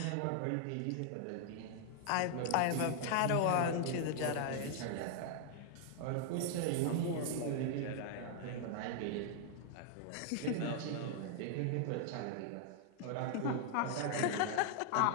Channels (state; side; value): different; both; correlation -0.01